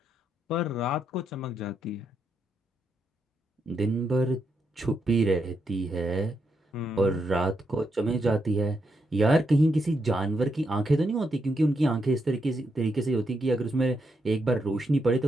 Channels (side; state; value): both; normal; correlation 0.81